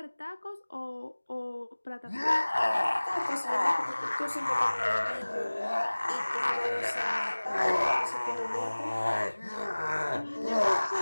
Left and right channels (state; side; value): inverted; both; correlation -1.00